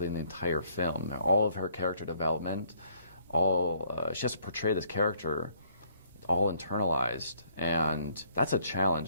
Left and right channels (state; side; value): inverted; both; correlation -0.65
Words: in the entire film. All of her character development, she has to portray this character all internalized. And that's a challenge,